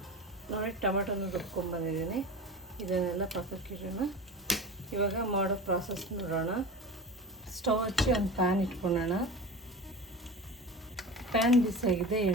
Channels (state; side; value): normal; both; correlation 0.31